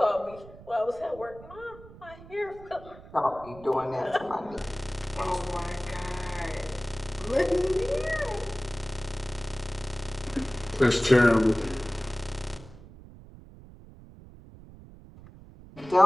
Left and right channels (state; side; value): noise; right; rumble, 19 dB below the sound